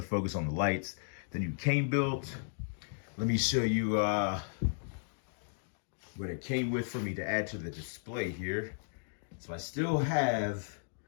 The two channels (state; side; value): silent; right; digital silence